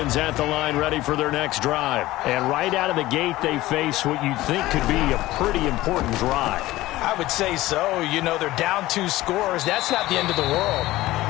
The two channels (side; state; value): right; quieter; 17.2 dB